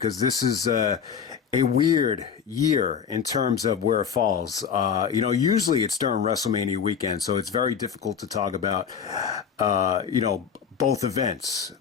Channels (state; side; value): quieter; right; 7.2 dB